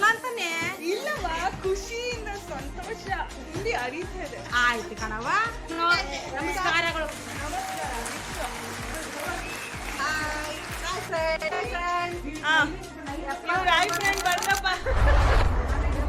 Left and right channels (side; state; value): both; identical; correlation 1.00